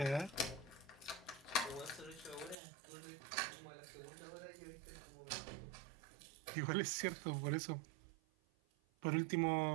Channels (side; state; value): left; drops out; at 2.6 s